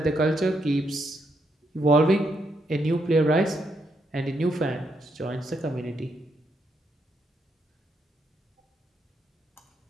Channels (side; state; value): both; normal; correlation 0.78